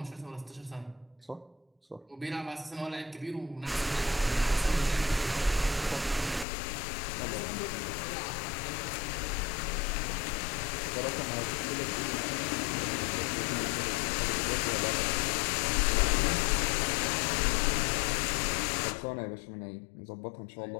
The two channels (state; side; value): drops out; right; at 6.5 s